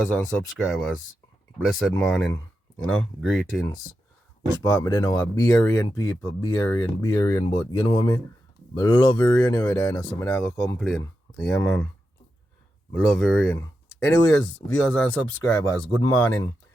and subscribers. Blessed morning, greetings. Which part me they know are Barian people, Barian, but you know what I mean? I love the rain over there, so I'm not gonna complain. Yeah, man. I love the rain. Anyways, viewers and subscribers, good morning.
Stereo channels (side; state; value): both; normal; correlation 0.88